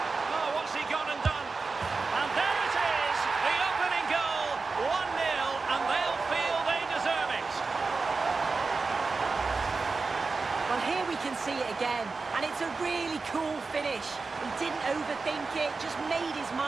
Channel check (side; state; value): left; quieter; 4.2 dB